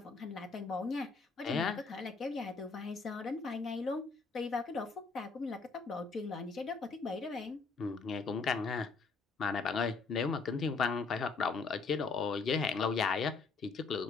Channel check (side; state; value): right; quieter; 4.5 dB